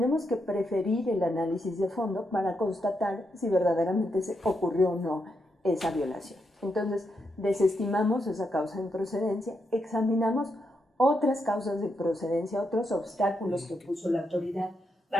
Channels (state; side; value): normal; both; correlation 0.82